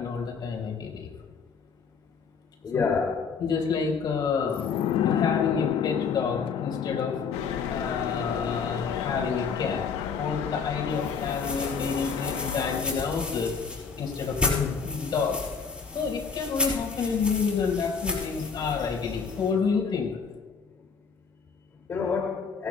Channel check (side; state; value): right; quieter; 5.7 dB